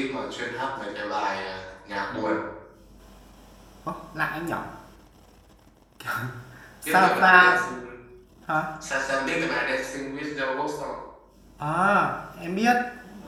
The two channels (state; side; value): identical; both; correlation 1.00